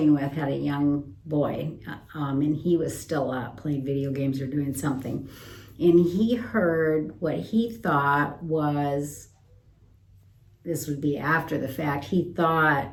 with had a young boy, and he was still up playing video games or doing something. And he heard what he thought was, this would be after the fact, he thought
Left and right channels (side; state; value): both; identical; correlation 1.00